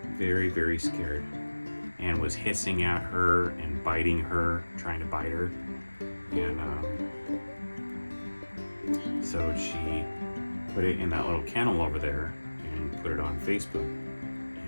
Very, very scared. And was hissing at her and biting her, trying to bite her. And so she put it in that little kennel over there and put it on Facebook.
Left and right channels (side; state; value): both; inverted; correlation -1.00